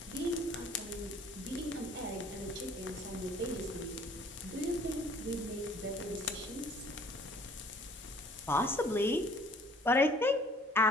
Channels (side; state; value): both; normal; correlation 0.55